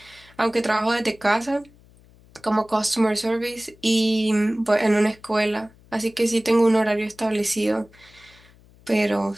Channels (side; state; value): left; noise; hum, 27 dB below the sound